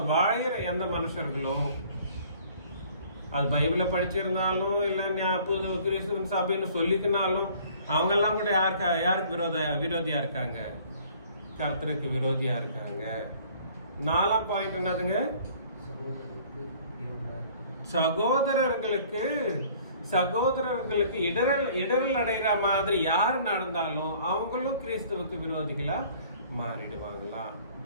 வாழற எந்த மனுஷர்களும், அது பைபிள படிச்சிருந்தாலும் இல்ல புது கிறிஸ்துவ சபைன்னு சொல்லிக்கினாலும் அவங்க எல்லாம் கூட யாருக்கு விரோதியா இருக்காங்க? கர்த்தருக்கு விரோதியா இருக்காங்க. 4ஆம் பாயிண்ட் என்னதுங்க? சகோதரர்களுக்கு இடரல் அடைகிற மாதிரி யார் நடந்தாலும் அவங்களும் கிறிஸ்துவுக்கு விரோதிகளா மாறிடுவாங்களா?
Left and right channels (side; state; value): both; inverted; correlation -0.54